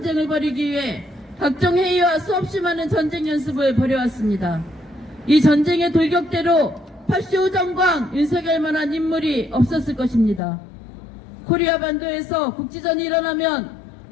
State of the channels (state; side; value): drops out; right; at 10.4 s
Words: 벌이기 위해 각종 회의와 수없이 많은 전쟁 연습을 벌여왔습니다. 이 전쟁의 돌격대로 파시오 정광 윤석열만한 인물이 없었을 것입니다. 코리아 반도에서 국지전이 일어나면